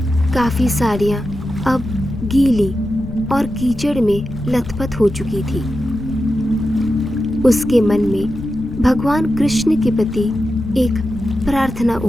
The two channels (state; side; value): noise; left; rumble, 12 dB below the sound